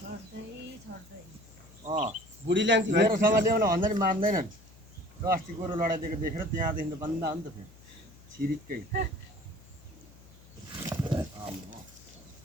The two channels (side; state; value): left; noise; hum, 23 dB below the sound